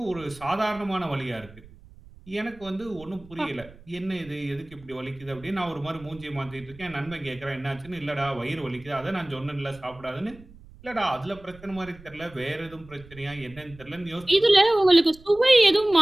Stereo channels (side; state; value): right; noise; rumble, 21 dB below the sound